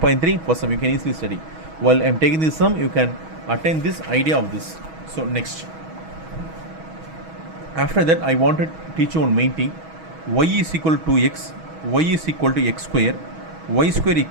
first sum you can easily study. While I am taking this sum, you can attain this idea of this. So next, after that I want to teach you one main thing. Y is equal to x, y is equal to x square, y square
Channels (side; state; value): left; late; 6.2 ms